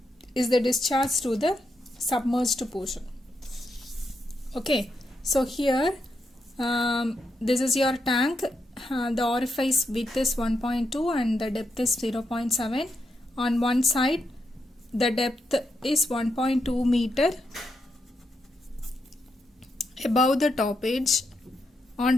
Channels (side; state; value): both; normal; correlation 0.82